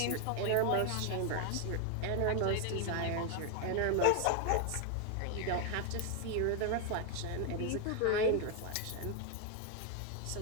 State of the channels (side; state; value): both; different; correlation 0.00